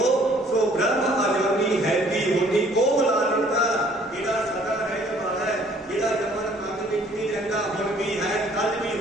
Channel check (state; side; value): normal; both; correlation 0.58